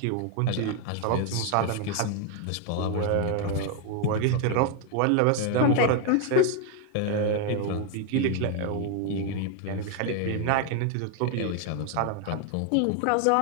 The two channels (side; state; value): both; different; correlation 0.01